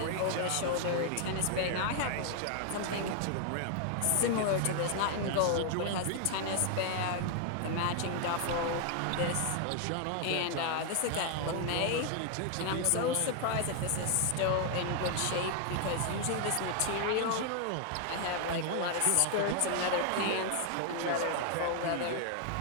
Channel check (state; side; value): different; both; correlation 0.00